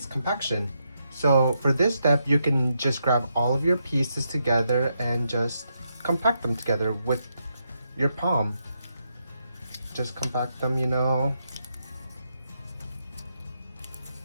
compaction. So for this step, you can just grab all of your pieces together and just compact them together with your palm. Just compact them, you know.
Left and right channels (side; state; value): both; inverted; correlation -0.81